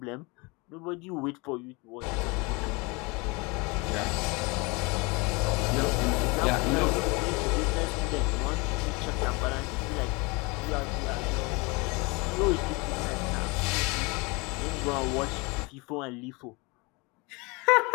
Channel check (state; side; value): quieter; right; 27.4 dB